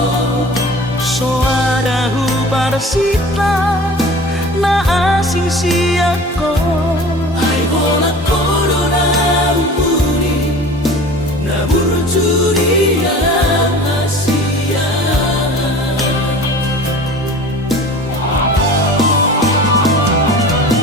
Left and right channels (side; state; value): both; normal; correlation 0.40